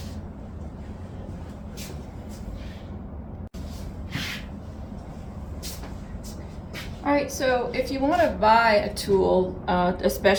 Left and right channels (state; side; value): identical; both; correlation 1.00